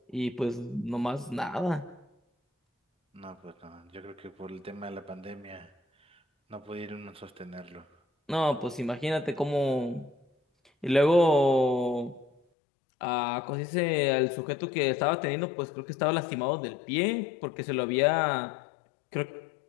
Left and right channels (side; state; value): right; drops out; at 12.4 s